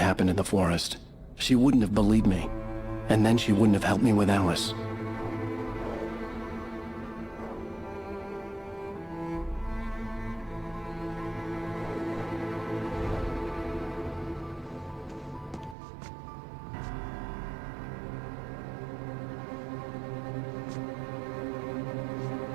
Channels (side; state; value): left; drops out; at 15.8 s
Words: in the forest. She wouldn't have believed me. And then she wouldn't have helped me with Alice.